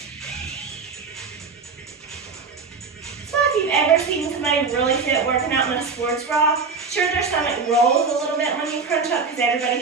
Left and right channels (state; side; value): quieter; left; 4.8 dB